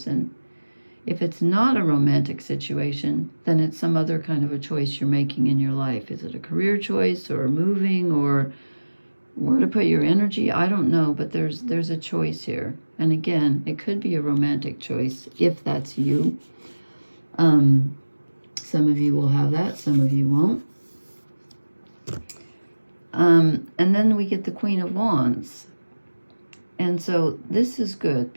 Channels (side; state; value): both; inverted; correlation -1.00